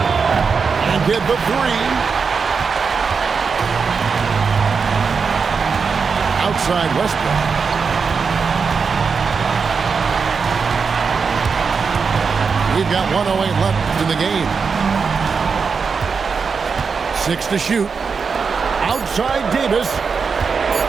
And get the three. Outside Westbrook. We've got 1:08 left in the game. 6 to shoot. Outside Davis.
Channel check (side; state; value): left; quieter; 5.4 dB